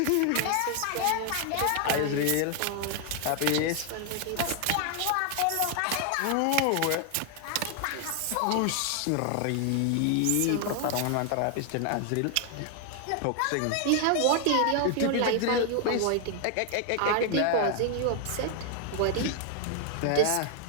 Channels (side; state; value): both; different; correlation 0.00